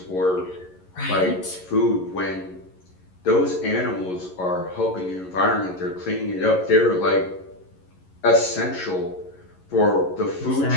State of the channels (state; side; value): late; right; 11 ms